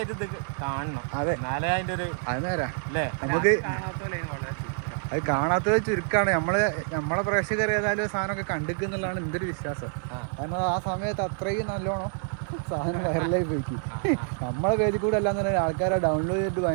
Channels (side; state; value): left; silent; 60 dB below the other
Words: ഇത് കാണണം. അതെ, എന്നാലേ അതിന്റെ ഒരു അത് നേരാ. അല്ലേ? നമുക്ക് വളരെ അത് കാണാത്തത് ചുരുക്കാണ്. നമ്മളെ പ്രേക്ഷകർ ഏതായാലും സാധനമൊക്കെ കണ്ടിക്കുന്നുള്ളതാണ് എൻ്റെ ഒരു വിശ്വാസം. കാരണം ആ സമയത്ത് അത്രയും നല്ലോണം സാധനം വൈറലായി പോയിക്കും. നമ്മളെ പേജിൽ കൂടെ അല്ലാന്ന് പറഞ്ഞാൽ ആൾക്കാരെ ഡൗൺലോഡ് ചെയ്തിട്ട്